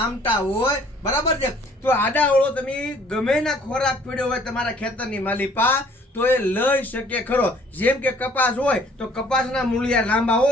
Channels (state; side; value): normal; both; correlation 0.58